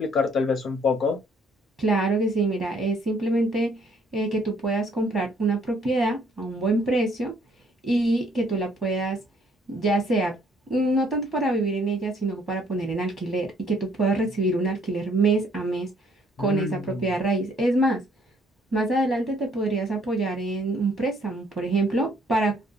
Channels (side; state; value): both; normal; correlation 0.64